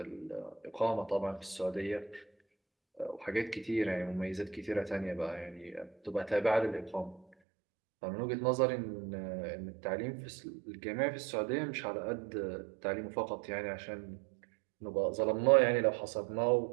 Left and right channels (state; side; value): drops out; left; at 7.2 s